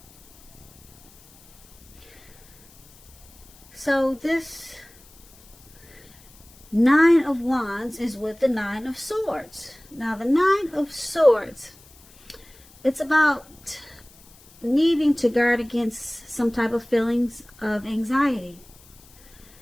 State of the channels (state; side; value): noise; left; hiss, 25 dB below the sound